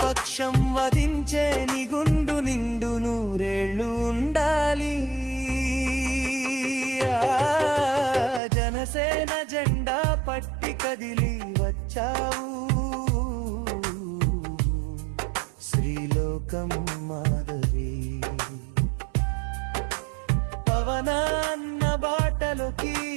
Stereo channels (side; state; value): left; drops out; at 8.4 s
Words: పక్షం వధించే నిగుండు నిండు నూరేళ్ళు ఉండాలి. జనసేన జెండా పట్టి కదిలి వచ్చావు, శ్రీలోకం మాధవి. పవనాన్న బాటలోకి